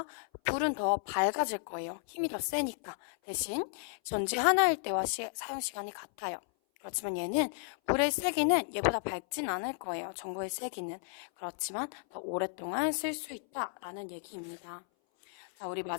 불은 더 밝아질 거예요. 힘이 더 세니까. 대신 전지 하나일 때와 사용 시간이 같아요. 그렇지만 얘는 불의 세기는 얘보다 밝진 않을 거예요. 전구의 세기는. 그렇지만 더 오랫동안 쓸 수 있다라는 얘기입니다. 자, 우리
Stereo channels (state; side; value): silent; right; 55 dB below the other